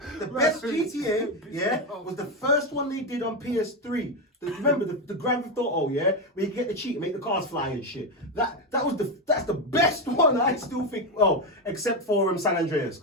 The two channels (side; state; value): both; normal; correlation 0.10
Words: the best GTA, was the first one they did on PS3. Remember the Grand Theft Auto, yeah, where you get the cheat and make the cars fly and shit. That's the best one. I still think. Well, except for San Andreas,